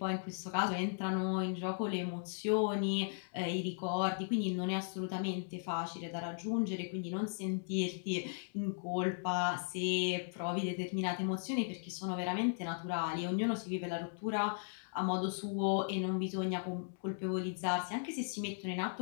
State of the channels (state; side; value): silent; right; digital silence